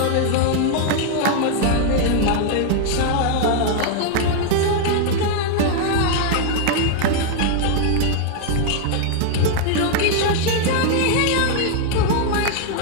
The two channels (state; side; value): different; both; correlation -0.01